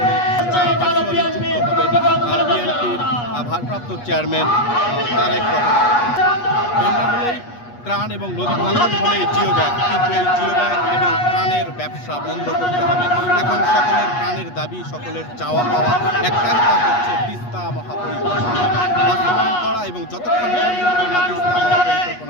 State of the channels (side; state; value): right; late; 8.3 ms